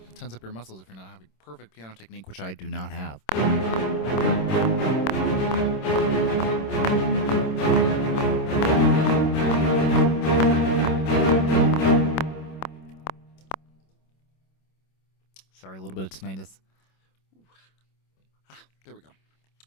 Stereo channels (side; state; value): right; late; 26 ms